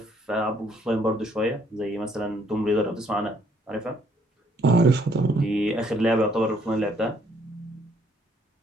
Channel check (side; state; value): both; normal; correlation 0.66